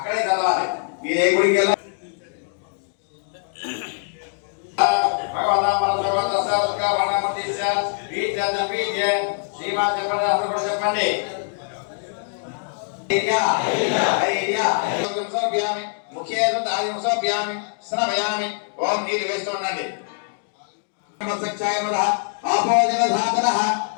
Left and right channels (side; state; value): right; silent; digital silence